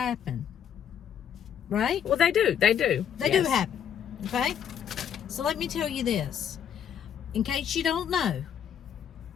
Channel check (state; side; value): quieter; right; 8.8 dB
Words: Right? Well, they do. They do. They do happen. Okay? So let me tell you this. In case you don't know,